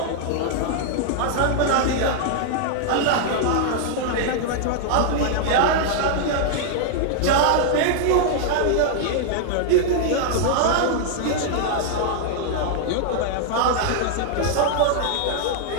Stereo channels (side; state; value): both; different; correlation -0.01